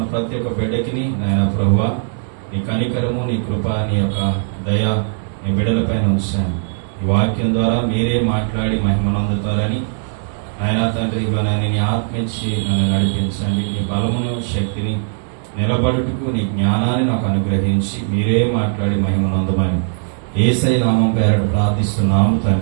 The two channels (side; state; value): left; silent; digital silence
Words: ప్రతి ఒక్క బిడ్డకిని నాయన ప్రభువా, నీ కనికరము, నీ కృప, నీ యొక్క దయ నీ బిడ్డలపైన ఉంచండి. ఈ వాక్యం ద్వారా మీరే మాట్లాడి మహిమనందుతారని ఆయన తండ్రి నీ ఆత్మ ఇచ్చి నన్ను నడిపించండి. నీ బలమును, శక్తిని, నిలబడుటకు నీ జ్ఞానాన్ని నాకు అనుగ్రహించి మీరే మాట్లాడి మహిమనందమని యేసయ్య నామం పేరట ప్రార్థిస్తున్నాము